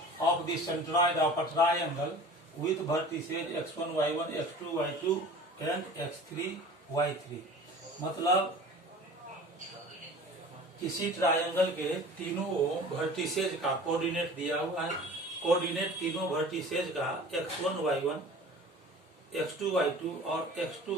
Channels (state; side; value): normal; both; correlation 0.42